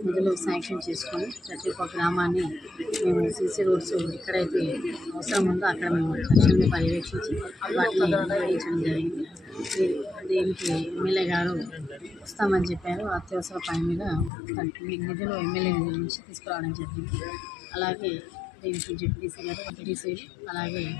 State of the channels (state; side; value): drops out; right; at 14.3 s